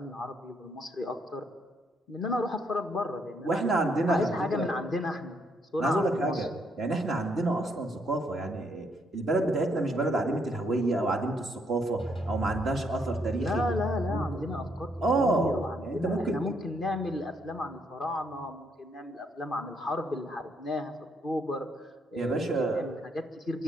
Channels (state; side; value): normal; both; correlation 0.72